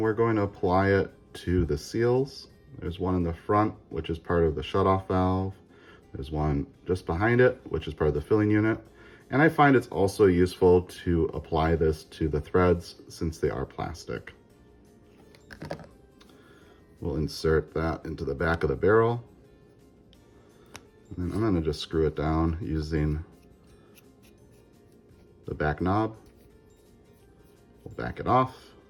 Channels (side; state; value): both; identical; correlation 1.00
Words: we're going to apply it to the seals. There's one in the front, which is part of the shutoff valve. There's one just behind it, which is part of the filling unit. And I find it's also useful to apply this to the threads since they are plastic. We'll insert that into the back of the barrel. And then I'm going to just screw it down using the back knob. We'll back it off.